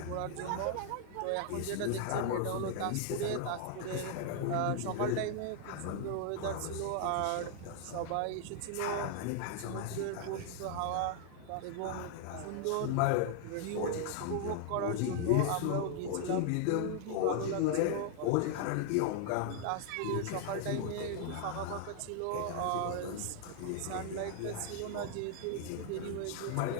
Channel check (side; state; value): both; different; correlation 0.00